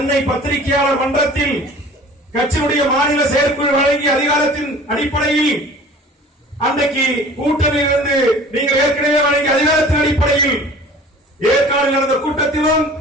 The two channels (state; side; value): normal; both; correlation 0.45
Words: பத்திரிகையாளர் மன்றத்தில் கட்சியுடைய மாநில செயற்குழு வழங்கிய அதிகாரத்தின் அடிப்படையில் அன்றைக்கு கூட்டணியிலிருந்து நீங்கள் ஏற்கனவே வழங்கிய அதிகாரத்தின் அடிப்படையில் ஏற்காடில் நடந்த கூட்டத்திலும்